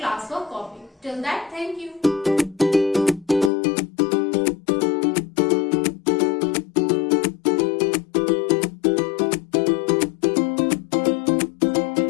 copy. Till that, thank you.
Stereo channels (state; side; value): drops out; right; at 3.5 s